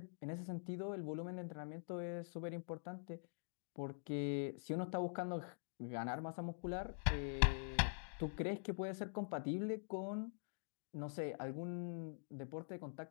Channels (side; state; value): right; silent; digital silence